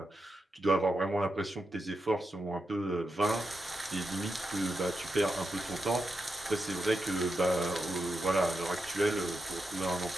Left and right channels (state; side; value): normal; both; correlation 0.87